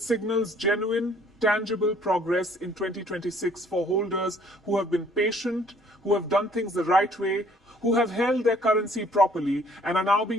signals genuine, tangible progress in 2026 for holders who have been patient, who have done things the right way, who have held their currency properly, and are now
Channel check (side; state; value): both; normal; correlation 0.59